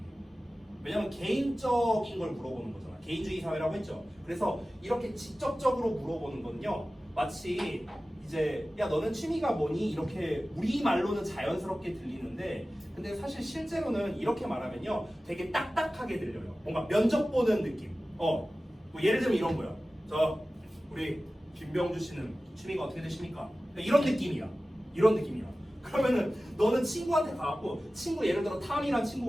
왜냐면 개인적인 걸 물어보는 거잖아. 개인주의 사회라고 했죠. 그래서 이렇게 직접적으로 물어보는 건요. 마치 이제 야 너는 취미가 뭐니? 이렇게 우리말로는 자연스럽게 들리는데 근데 사실 실제로는 이렇게 말하면요. 되게 딱딱하게 들려요. 뭔가 면접 보는 느낌. 뭐 예를 들면 이런 거야. 우리 김병주 씨는 취미가 어떻게 되십니까? 이런 느낌이야. 그러면은 너는 친구한테 가갖고 친구 예를 들어 탐이란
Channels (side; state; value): both; normal; correlation 0.96